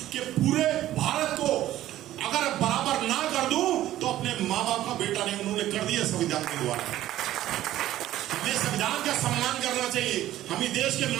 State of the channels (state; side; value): quieter; left; 13.8 dB